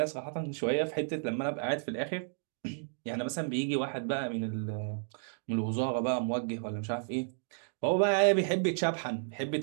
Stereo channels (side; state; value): left; silent; digital silence